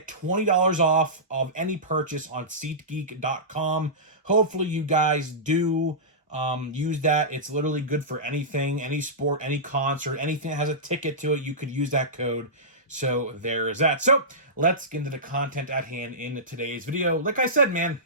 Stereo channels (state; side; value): normal; both; correlation -0.18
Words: $20 off of any purchase on SeatGeek.com. Hopefully you guys do use that. It's literally good for anything, any sport, any concert, anything that has a ticket to it. You could use that code. So there is that. So let's get into the content at hand in today's video. Like I said, man,